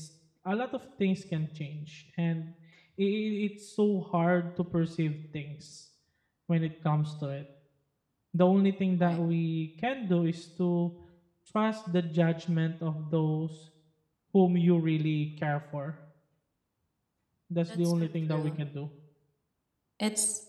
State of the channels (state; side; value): identical; both; correlation 1.00